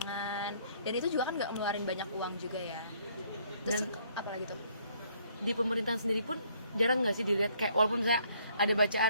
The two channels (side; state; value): both; inverted; correlation -0.65